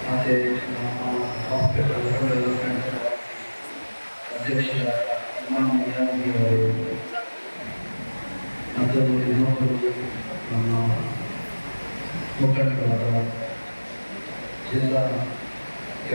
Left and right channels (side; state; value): both; inverted; correlation -1.00